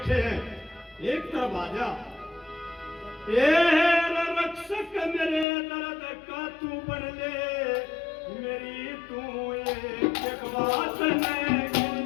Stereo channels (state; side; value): drops out; right; at 5.5 s